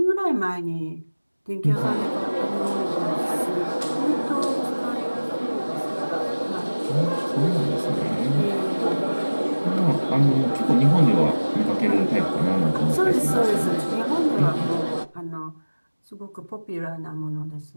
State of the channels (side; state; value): both; inverted; correlation -1.00